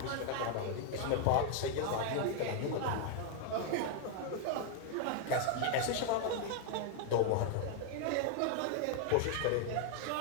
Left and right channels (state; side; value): different; both; correlation 0.00